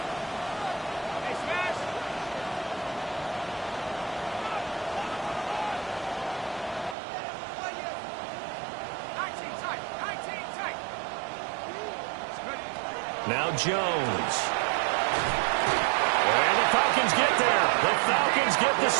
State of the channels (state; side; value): drops out; left; at 7.0 s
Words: Now Jones. And the Falcons get there. The Falcons get the